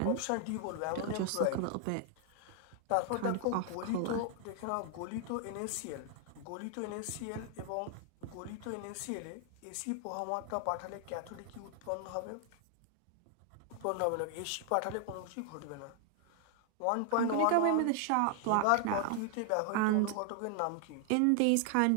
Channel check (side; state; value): both; different; correlation 0.00